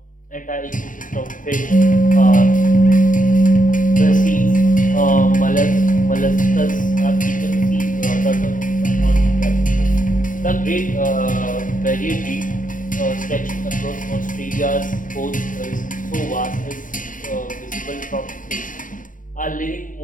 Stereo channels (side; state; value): right; late; 0.39 ms